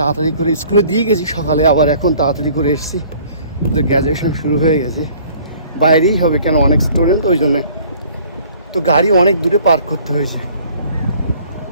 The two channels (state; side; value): inverted; both; correlation -0.54